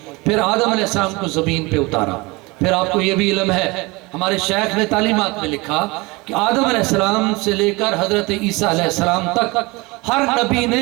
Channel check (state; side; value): quieter; left; 24.3 dB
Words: پھر آدم علیہ السلام کو زمین پہ اتارا. پھر آپ کو یہ بھی علم ہے ہمارے شیخ نے تعلیمات میں لکھا کہ آدم علیہ السلام سے لے کر حضرت عیسیٰ علیہ السلام تک ہر نبی نے